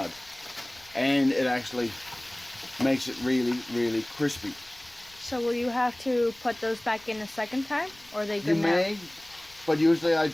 And it actually makes it really, really crispy. So will you have to put those back in a second time, or are they good You now? may, but usually I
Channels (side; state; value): left; noise; rumble, 27 dB below the sound